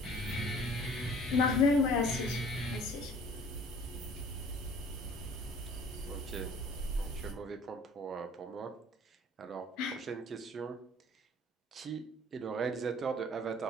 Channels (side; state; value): both; normal; correlation 0.51